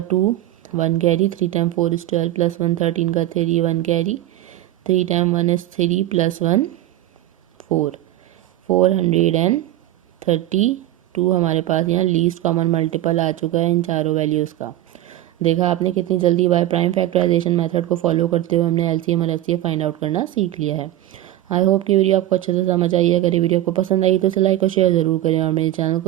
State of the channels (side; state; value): left; quieter; 14.3 dB